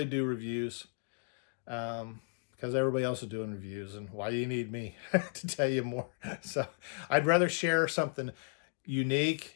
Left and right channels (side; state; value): right; silent; 55 dB below the other